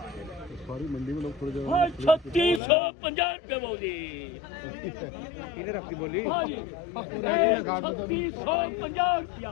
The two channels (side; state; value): right; drops out; at 2.6 s